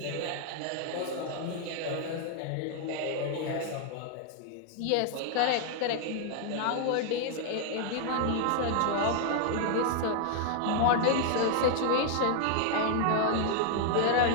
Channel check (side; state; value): both; different; correlation 0.00